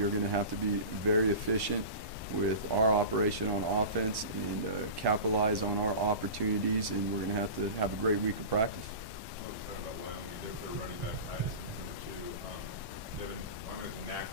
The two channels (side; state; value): left; late; 1.1 ms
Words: are going to have to be very efficient with our operation on offense and capitalize on our opportunities, and we're going to have a great week of practice. Talking about Wyoming, their running back Titus, number 2. Wyoming has a knack